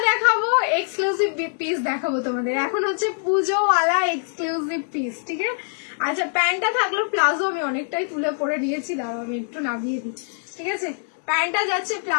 দেখাবো এক্সক্লুসিভ পিস দেখাবো তোমাদের। এখন হচ্ছে পুজোওয়ালা এক্সক্লুসিভ পিস, ঠিক আছে? আচ্ছা প্যান্টটা থাকলো প্লাজো, আমি অনেকটাই তুলে পরে দিয়েছি, দাঁড়াও আমি একটু নামিয়ে দিই, ঠিক আছে? প্যান্টটা যাচ্ছে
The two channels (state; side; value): silent; right; digital silence